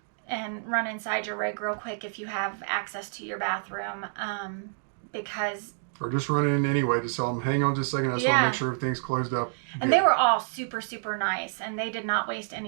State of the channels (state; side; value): silent; left; digital silence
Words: And run inside your rig real quick if you have access to your bathroom, because... Or just run in anyway to tell them, hang on just a second, I just want to make sure everything's closed up. And they were all super, super nice, and they did not waste